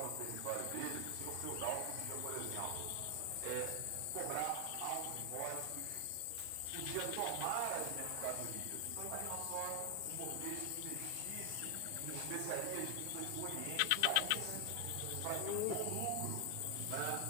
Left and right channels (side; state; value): both; different; correlation 0.00